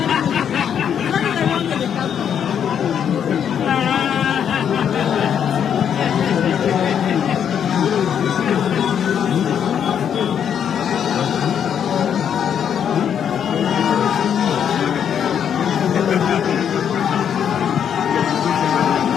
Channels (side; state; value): right; quieter; 8.5 dB